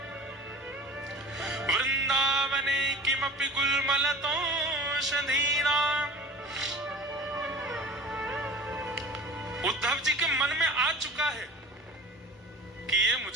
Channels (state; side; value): normal; both; correlation 0.40